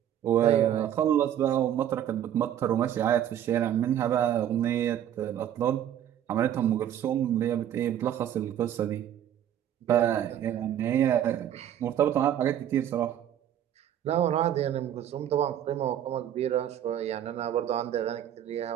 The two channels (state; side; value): quieter; left; 10.6 dB